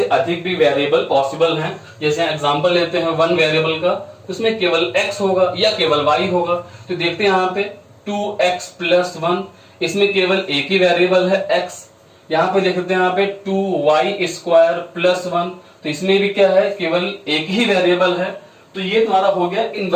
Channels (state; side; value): identical; both; correlation 1.00